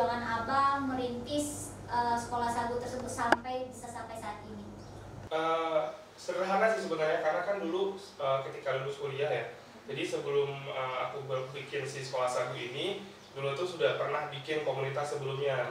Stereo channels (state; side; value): identical; both; correlation 1.00